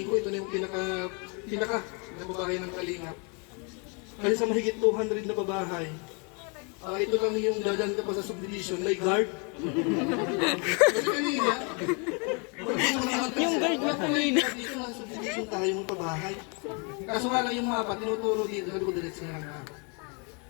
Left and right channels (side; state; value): right; quieter; 34.5 dB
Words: ko, ito na yung pinaka na babahay ng Kalingap. Kasi sa mahigit 200 na babahay, ito lang yung dadaan ka pa sa subdivision, may guard. Kasi kanina, Yung guard mo kanina. dito lang subdivision tayo ng pabahay. Kaso nga lang yung mapa, tinuturo dito, sabi ko diretso na lang ako.